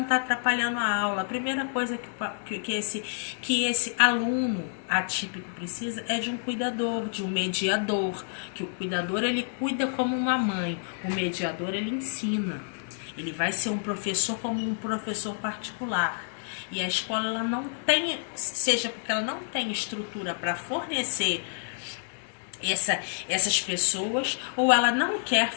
tá atrapalhando a aula. A primeira coisa que esse aluno atípico precisa é de um cuidador, de um mediador. Que o cuidador, ele cuida como uma mãe, o mediador, ele ensina. Ele vai ser um professor como um professor particular. E a escola, ela não tem, seja porque ela não tem estrutura para fornecer essas pessoas, ou ela não quer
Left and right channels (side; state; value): right; silent; digital silence